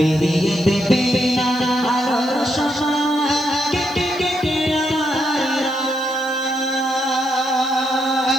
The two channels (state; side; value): noise; left; hiss, 24 dB below the sound